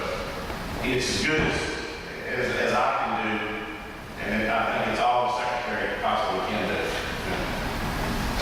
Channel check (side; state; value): both; identical; correlation 1.00